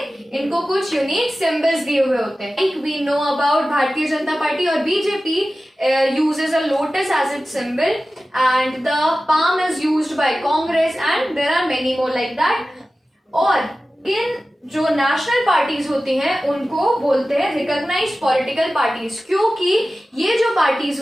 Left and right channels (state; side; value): normal; both; correlation 0.95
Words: इनको कुछ यूनिक सिंबल्स दिए हुए होते हैं। Like we know about Bharatiya Janata party और BJP uses a lotus as its symbol, and the palm is used by Congress, and there are many more like that. और इन जो नेशनल पार्टीज होती हैं उनको बोलते हैं रिकॉग्नाइज्ड पॉलिटिकल पार्टीज, क्योंकि ये जो पार्टीज